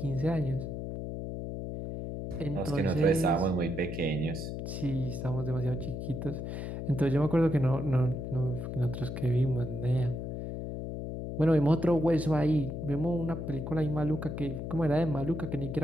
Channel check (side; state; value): left; noise; hum, 5 dB below the sound